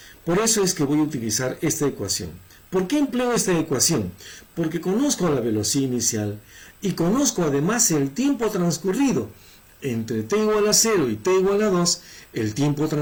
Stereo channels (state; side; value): identical; both; correlation 1.00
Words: Por eso es que voy a utilizar esta ecuación. ¿Por qué empleo esta ecuación? Porque conozco la velocidad inicial y conozco además el tiempo transcurrido. Entre t igual a 0 y t igual a 2, el tiempo